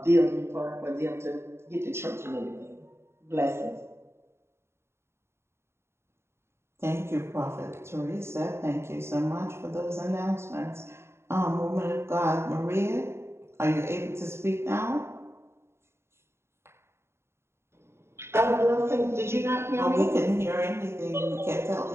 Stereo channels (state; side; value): late; left; 0.12 ms